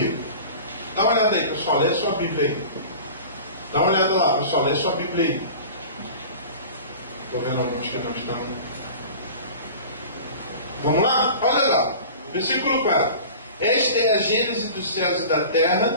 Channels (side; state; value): both; inverted; correlation -0.38